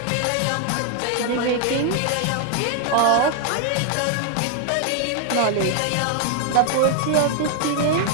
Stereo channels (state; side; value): different; both; correlation 0.00